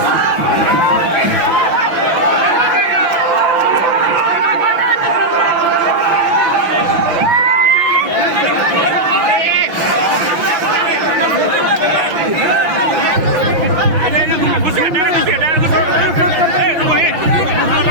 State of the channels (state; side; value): late; left; 6.0 ms